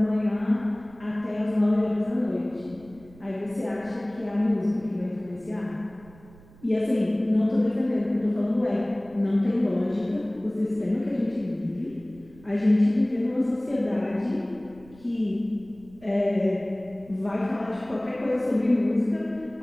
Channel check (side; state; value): right; noise; rumble, 23 dB below the sound